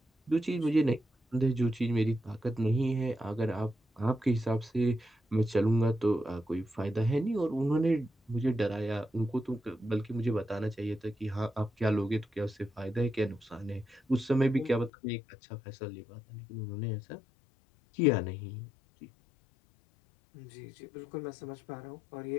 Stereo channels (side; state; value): right; drops out; at 14.9 s